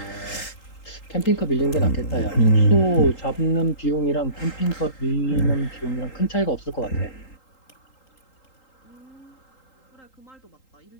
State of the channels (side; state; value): right; late; 3.8 ms